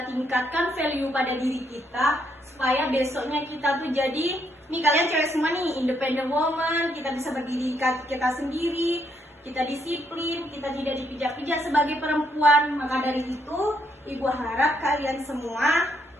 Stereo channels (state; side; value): normal; both; correlation 0.74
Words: tingkatkan value pada diri kita, supaya besoknya kita tuh jadi, nih kalian cewek semua nih, independent woman, kita bisa berdiri kita sendiri, kita disiplin, kita tidak dipijak-pijak sebagai perempuan. Maka dari itu, Ibu harap kalian semua